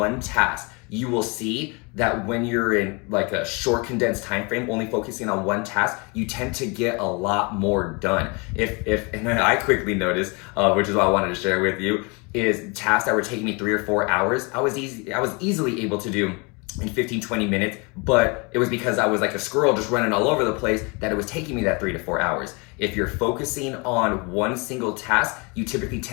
task. You will see that when you're in like a short condensed time frame, only focusing on one task, you tend to get a lot more done. And then I quickly noticed, which is what I wanted to share with you, is tasks that were taking me 3 or 4 hours, I was easily able to do in 15-20 minutes, but it was because I was like a squirrel just running all over the place that it was taking me that 3 to 4 hours. If you're focusing on one single task, you typically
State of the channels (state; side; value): quieter; right; 30.2 dB